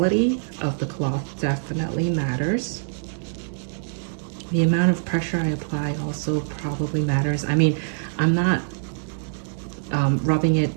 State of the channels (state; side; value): silent; left; 62 dB below the other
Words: of the cloth definitely matters. The amount of pressure I apply also probably matters. I mean, I'm not rubbing it